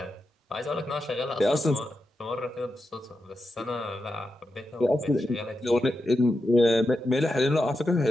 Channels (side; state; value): both; normal; correlation 0.88